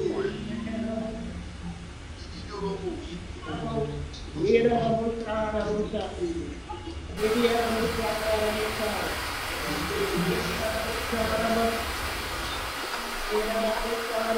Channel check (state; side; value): identical; both; correlation 1.00